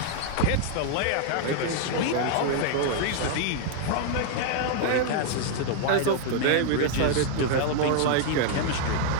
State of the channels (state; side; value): different; both; correlation 0.00